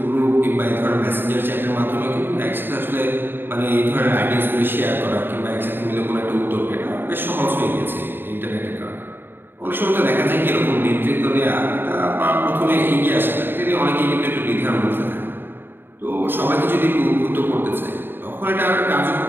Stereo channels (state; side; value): late; left; 0.099 ms